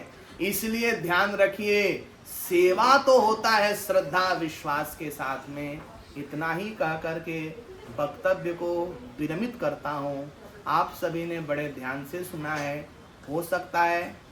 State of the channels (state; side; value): identical; both; correlation 1.00